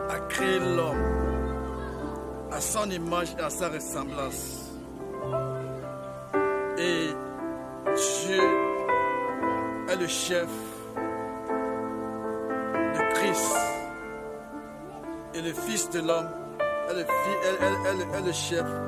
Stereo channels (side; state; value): both; identical; correlation 1.00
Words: créé l'homme à son image et à sa ressemblance. Et Dieu est le chef de Christ. Et le Fils de l'homme est le chef